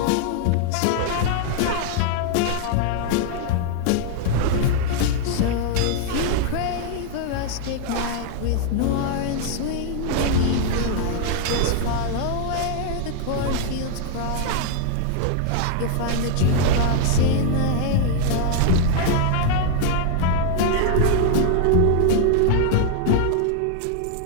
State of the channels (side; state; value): both; different; correlation -0.01